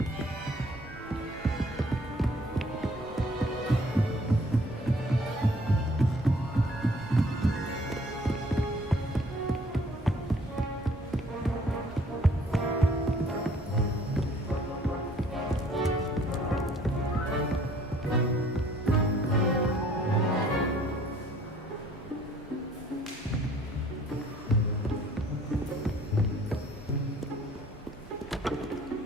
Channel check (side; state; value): both; normal; correlation 0.57